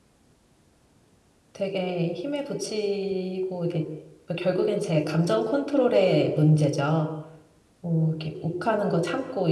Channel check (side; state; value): both; identical; correlation 1.00